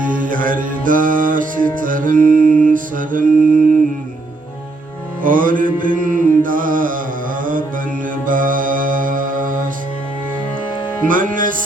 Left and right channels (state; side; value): quieter; left; 3.1 dB